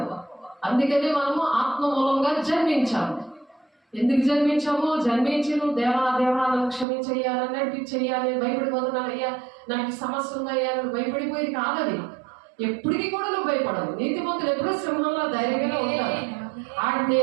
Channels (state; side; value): drops out; left; at 6.9 s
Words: అందుకని మనము ఆత్మ మూలంగా జన్మించాము. ఎందుకు జన్మించాము? జన్మించి నువ్వు దేవా నన్ను క్షమించయ్యా, నడిపించయ్యాలి, భయపడిపోతున్నానయ్యా, నాకు సమస్య ఉందయ్యా, నువ్వు భయపడిపోయేది కాదది. ఎప్పటికీ కూడా నువ్వు భయపడవు. నీతిమంతులు ఎప్పుడూ సింహంలో ధైర్యంగా ఉంటారు.